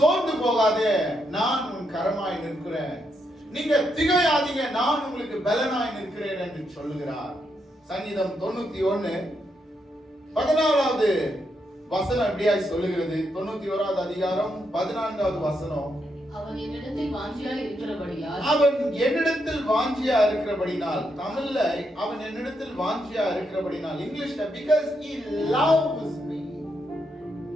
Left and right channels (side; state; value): both; normal; correlation 0.80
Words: போகாதே, நான் உன் கரமாய் நிற்கிறேன். நீங்க திகையாதீங்க, நான் உங்களுக்கு பலனாய் நிற்கிறேன் என்று சொல்லுகிறார். சங்கீதம் 91:14 வசனம் எப்படியாய் சொல்லுகிறது? 91வது அதிகாரம் 14வது வசனம். அவன் என்னிடத்தில் வாஞ்சியா இருக்கிறபடினால், தமிழ்ல அவன் என்னிடத்தில் வாஞ்சியா இருக்கிறபடினால், இங்கிலீஷ்ல because he loves me,